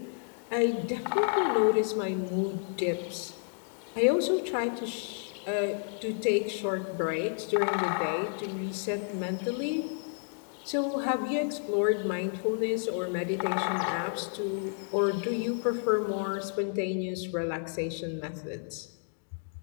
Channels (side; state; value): right; quieter; 39.9 dB